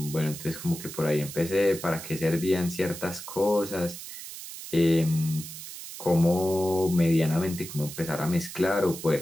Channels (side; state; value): right; noise; hiss, 11 dB below the sound